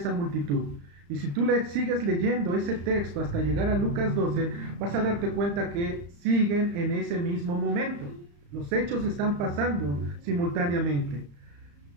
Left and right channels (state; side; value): late; left; 35 ms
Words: multitud. Y si tú sigues leyendo ese texto hasta llegar a Lucas 12, vas a darte cuenta que siguen en ese mismo momento. Los hechos están pasando simultáneamente.